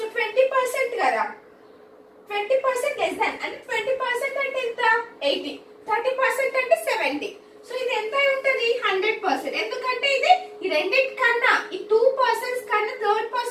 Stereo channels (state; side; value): identical; both; correlation 1.00